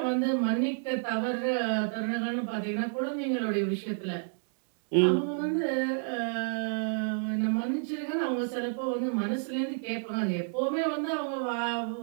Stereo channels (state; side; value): silent; left; digital silence